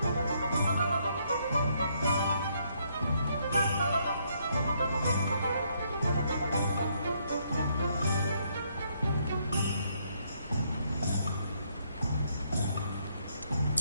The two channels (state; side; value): inverted; both; correlation -0.72